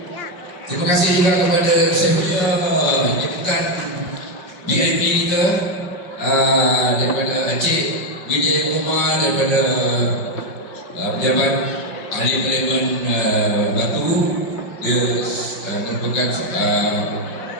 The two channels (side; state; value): right; late; 5.2 ms